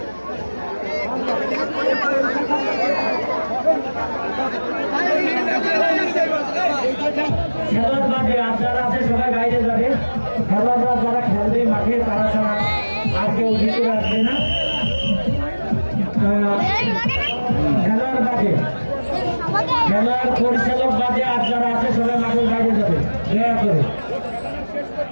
খেলার মাঠে আর যারা আছে সবাই বাইরে যাবে, খেলোয়াড়রা যারা খেলবে মাঠে তারা ছাড়া আর কেউ ভিতরে আসবে না। খেলার মাঠে খেলার পরিচালক বাদে আর যারা আছে সবাই মাঠের বাইরে যাবে, দয়া করে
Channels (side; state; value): both; inverted; correlation -1.00